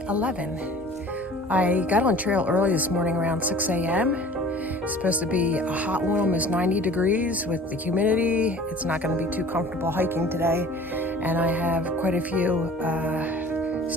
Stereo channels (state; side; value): normal; both; correlation 0.45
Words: 11. I got on trail early this morning around 6 a.m. It's supposed to be a hot one, almost 90 degrees with the humidity. It's not going to be too comfortable hiking today, and I have quite a few